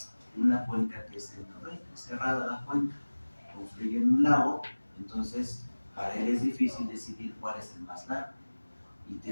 una cuenca que es el norte, cerrada la cuenca, confluye en un lago, entonces para él es difícil decidir cuál es el más largo y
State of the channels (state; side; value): inverted; both; correlation -1.00